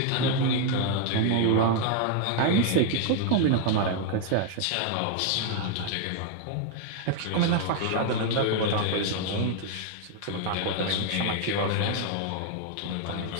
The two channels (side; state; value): both; different; correlation 0.00